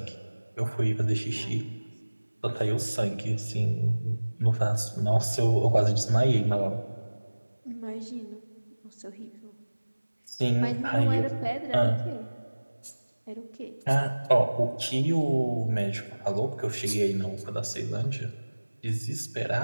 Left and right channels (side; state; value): both; inverted; correlation -1.00